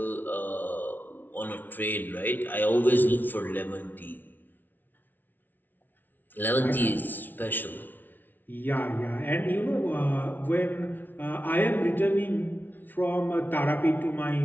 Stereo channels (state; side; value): late; right; 0.088 ms